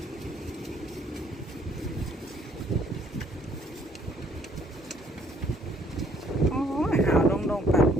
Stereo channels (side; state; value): both; normal; correlation 0.64